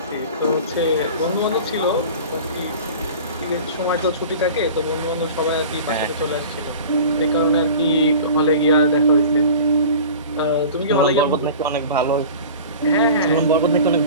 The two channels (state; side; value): inverted; both; correlation -0.39